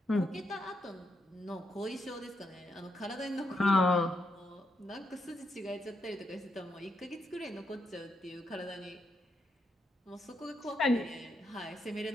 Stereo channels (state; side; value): normal; both; correlation 0.80